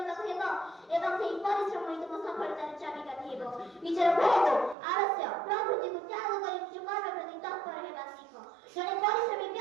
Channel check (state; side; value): drops out; left; at 4.8 s